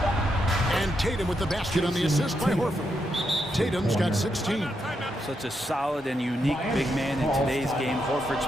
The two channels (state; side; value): normal; both; correlation 0.82